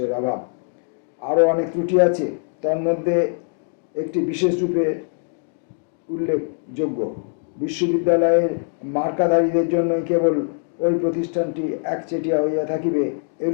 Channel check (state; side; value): silent; right; digital silence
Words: অভাব। আরও অনেক ত্রুটি আছে, তার মধ্যে একটি বিশেষ রূপে উল্লেখযোগ্য। বিশ্ববিদ্যালয়ের মার্কাধারীদের জন্যই কেবল ওই প্রতিষ্ঠানটি একচেটিয়া হইয়া থাকিবে,